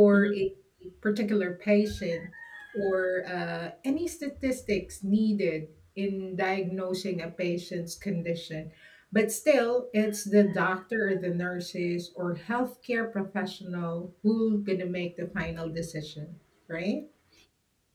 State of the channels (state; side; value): identical; both; correlation 1.00